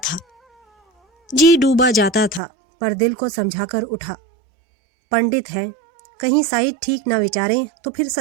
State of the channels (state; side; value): drops out; left; at 2.4 s